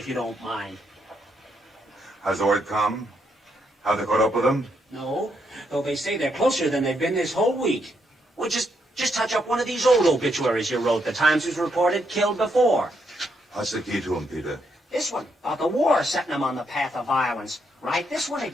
you don't mind. Has the word come? Have they caught up with them? No, though they say they're closer than they've been this whole week. Well, just touch up one of these old obituaries you wrote. The Times was reported killed before. What's the key to them, Peter? This one, about the war setting them on the path of violence. Write this one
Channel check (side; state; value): both; normal; correlation 0.77